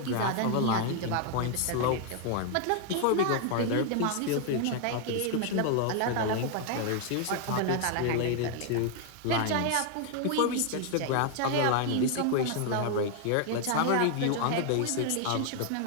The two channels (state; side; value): different; both; correlation 0.00